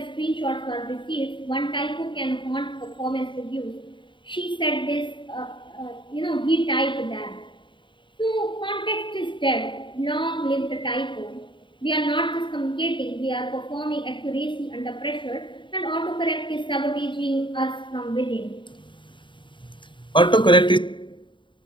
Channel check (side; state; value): right; late; 0.23 ms